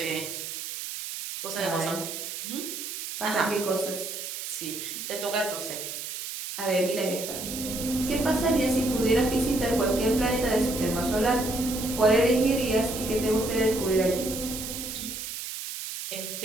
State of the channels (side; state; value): right; noise; hiss, 7 dB below the sound